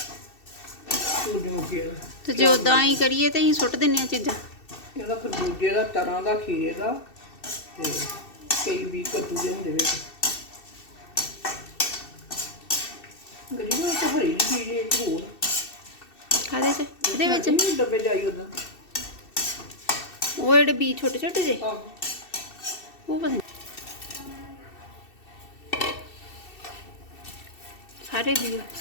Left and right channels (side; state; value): right; late; 2.7 ms